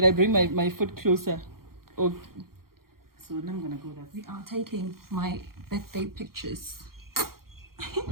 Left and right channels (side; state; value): left; late; 0.93 ms